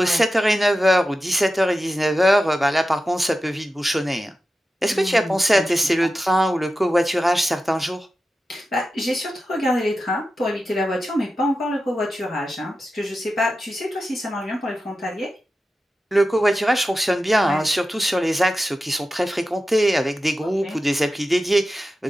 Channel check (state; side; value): normal; both; correlation 0.92